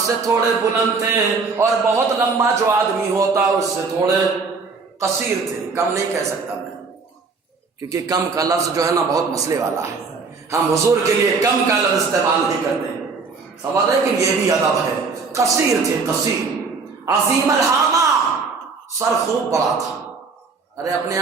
تھوڑے بلند تھے، اور بہت لمبا جو آدمی ہوتا اس سے تھوڑے قصیر تھے، کم نہیں کہہ سکتا میں، کیونکہ کم کا لفظ جو ہے نا بہت مسئلے والا ہے، ہم حضور کے لیے کم کا لفظ استعمال نہیں کرتے، سمجھ رہے کہ یہ بھی ادب ہے، قصیر تھے، قصیر، عظیم الہامہ، سر خوب بڑا تھا، ارے اپنے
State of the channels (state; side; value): quieter; left; 4.6 dB